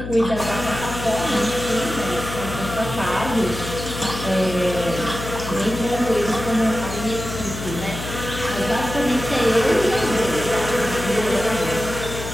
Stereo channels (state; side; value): noise; left; hum, 8 dB below the sound